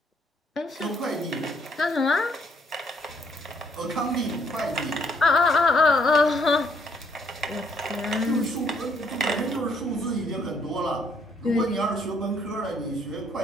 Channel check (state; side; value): normal; both; correlation 0.67